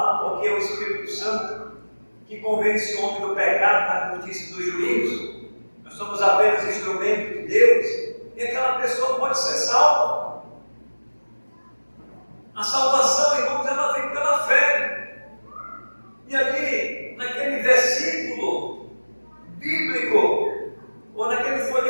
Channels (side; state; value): both; inverted; correlation -1.00